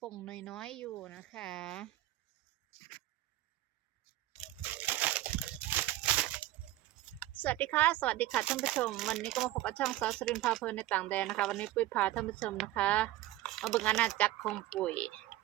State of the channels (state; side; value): quieter; left; 15.6 dB